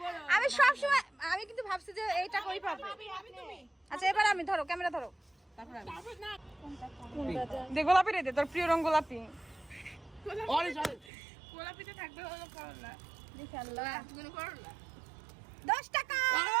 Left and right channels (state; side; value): drops out; left; at 11.1 s